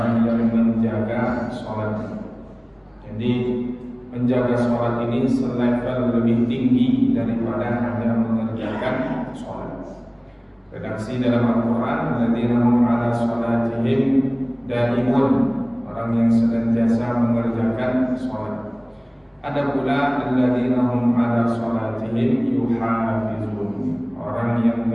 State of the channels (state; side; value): identical; both; correlation 1.00